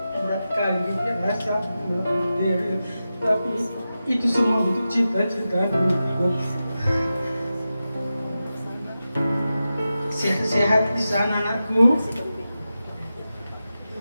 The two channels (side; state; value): both; inverted; correlation -0.92